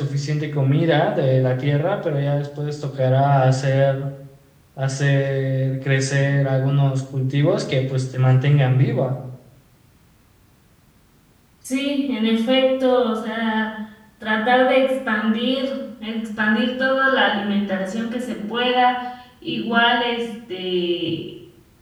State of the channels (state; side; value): identical; both; correlation 1.00